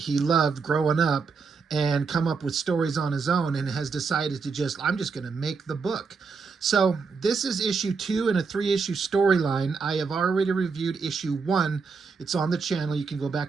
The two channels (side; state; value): left; quieter; 5.0 dB